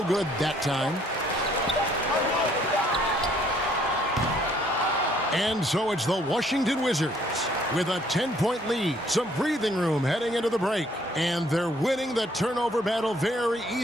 good that time. And so it's the Washington Wizards with a 10-point lead. Some breathing room heading into the break. And they're winning the turnover battle very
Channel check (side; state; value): both; normal; correlation 0.63